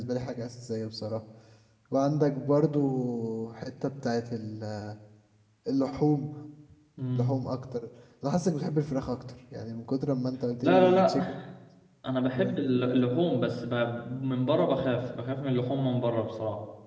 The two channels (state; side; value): identical; both; correlation 1.00